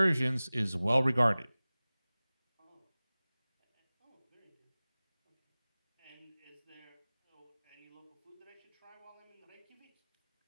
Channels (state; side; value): inverted; both; correlation -0.99